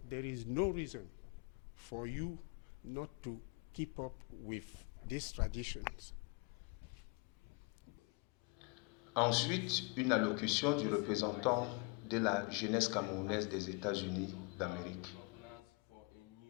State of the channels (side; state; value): right; quieter; 32.2 dB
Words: is no reason for you not to keep up with these traditions. Ensuite, une allocution du représentant de la jeunesse camerounaise des États-Unis d'Amérique.